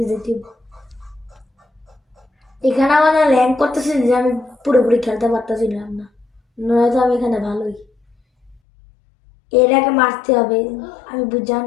যেতে হবে। এখানে আমার ল্যান্ড করতেছি যে আমি পুরোপুরি খেলতে পারতেছিলাম না, নয়তো আমি এখানে ভালোই। এটাকে মারতে হবে, আমি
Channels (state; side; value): drops out; right; at 8.6 s